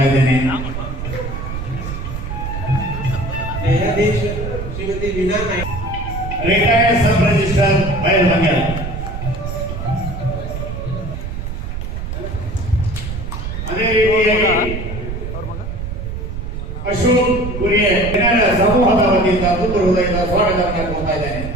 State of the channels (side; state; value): right; noise; rumble, 6 dB below the sound